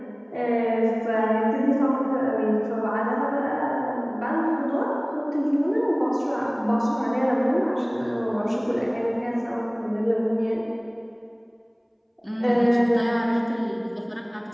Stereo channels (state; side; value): identical; both; correlation 1.00